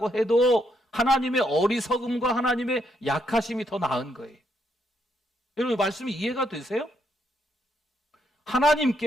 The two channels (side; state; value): both; normal; correlation 0.76